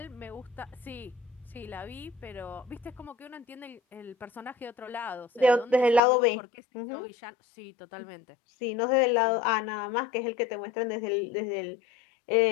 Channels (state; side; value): drops out; right; at 6.0 s